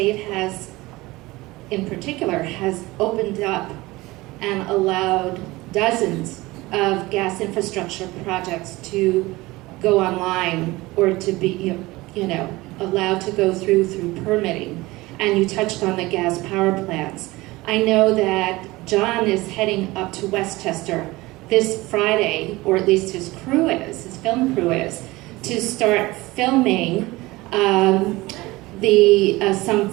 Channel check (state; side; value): quieter; left; 20.5 dB